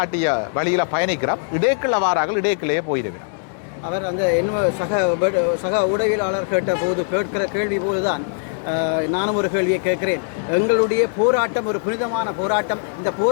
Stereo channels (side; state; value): right; silent; digital silence